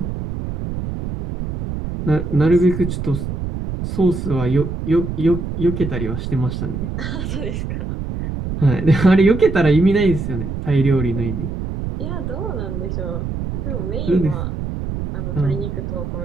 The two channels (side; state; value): right; noise; rumble, 5 dB below the sound